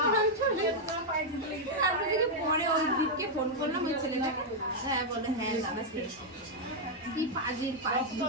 তারপর থেকে পরে ওই দিককে ফোন করলাম ওই ছেলেটাকে। হ্যাঁ বলে হ্যাঁ দাদা খেয়েছি। কি পাজির পাজি।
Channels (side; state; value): both; normal; correlation -0.02